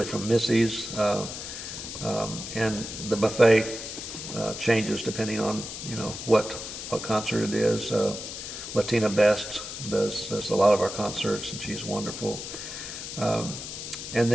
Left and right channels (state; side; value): noise; left; hiss, 8 dB below the sound